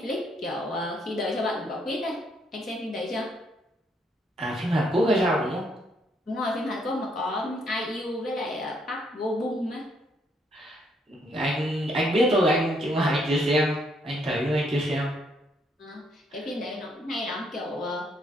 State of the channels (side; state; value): both; normal; correlation 0.71